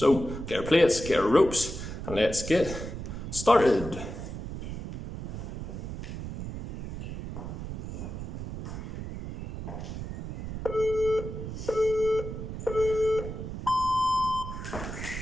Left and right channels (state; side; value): noise; right; rumble, 7 dB below the sound